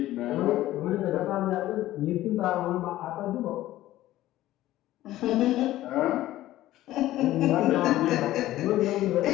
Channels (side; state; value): right; quieter; 15.0 dB